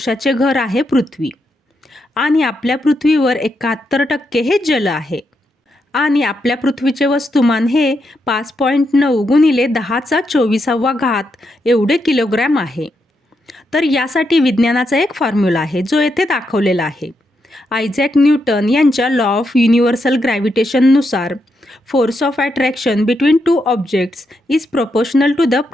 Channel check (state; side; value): normal; both; correlation 0.82